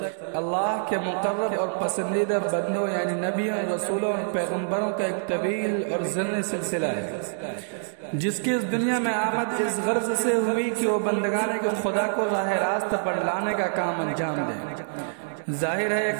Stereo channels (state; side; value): silent; left; digital silence